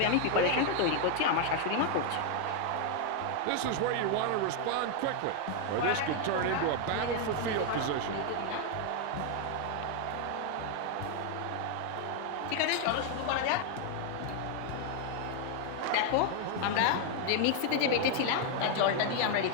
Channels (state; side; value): different; both; correlation 0.00